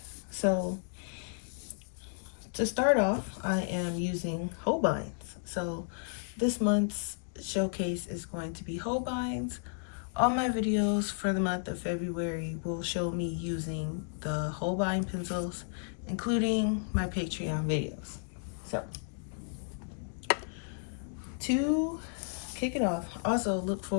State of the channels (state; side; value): silent; right; digital silence